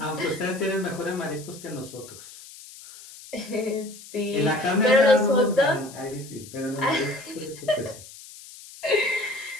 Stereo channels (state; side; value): noise; left; hiss, 17 dB below the sound